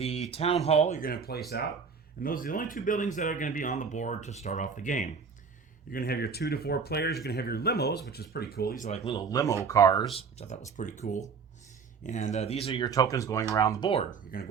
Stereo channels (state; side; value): quieter; left; 5.8 dB